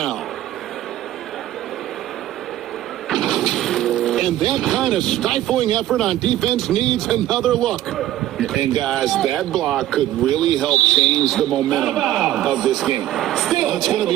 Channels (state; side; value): quieter; left; 13.8 dB